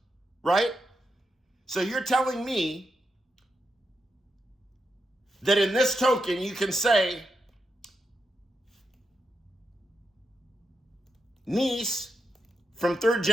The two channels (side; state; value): both; normal; correlation 0.85